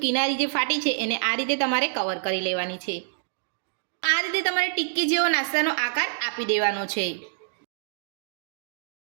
કિનારી જે ફાટી છે એને આ રીતે તમારે કવર કરી લેવાની છે। આ રીતે તમારે ટિક્કી જેવો નાસ્તાનો આકાર આપી દેવાનો છે।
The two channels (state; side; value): silent; left; digital silence